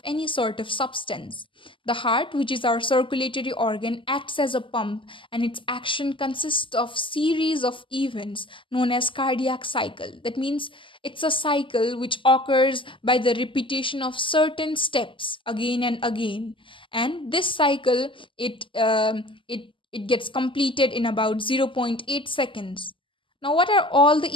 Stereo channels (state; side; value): late; right; 0.25 ms